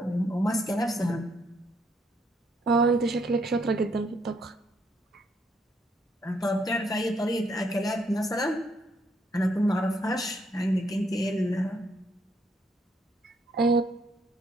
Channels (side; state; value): both; normal; correlation 0.72